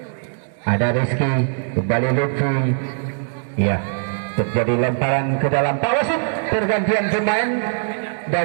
Ada Rizky, kembali Lutfi. Ya, terjadi lemparan ke dalam pawasit. Pergantian pemain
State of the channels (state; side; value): silent; left; digital silence